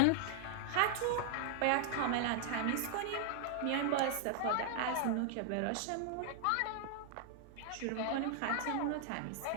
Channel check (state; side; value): different; both; correlation 0.00